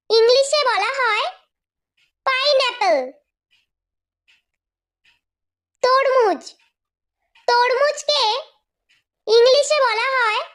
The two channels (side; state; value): both; identical; correlation 1.00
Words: ইংলিশে বলা হয় পাইনঅ্যাপল। তরমুজ। তরমুজকে ইংলিশে বলা হয়